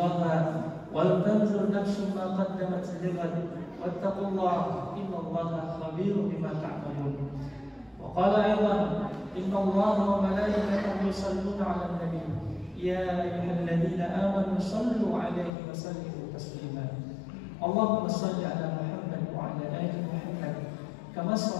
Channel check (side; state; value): right; drops out; at 15.5 s